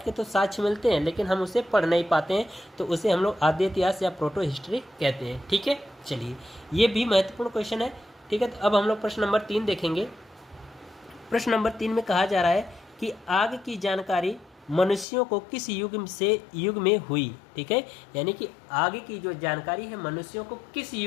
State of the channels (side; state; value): right; drops out; at 15.1 s